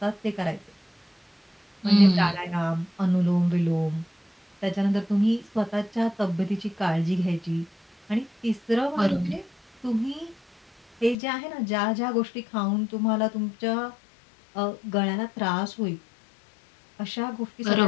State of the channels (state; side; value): drops out; right; at 11.2 s